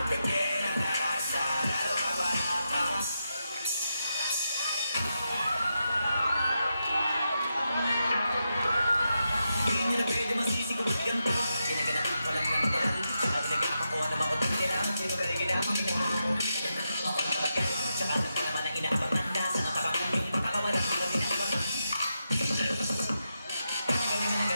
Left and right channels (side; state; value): both; inverted; correlation -0.86